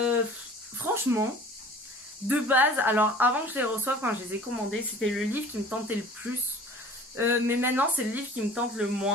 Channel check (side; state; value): both; normal; correlation 0.46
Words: Franchement, de base, alors avant que je les reçoive, quand je les ai commandés, c'était le livre qui me tentait le plus. Mais maintenant, c'est le livre qui me tente le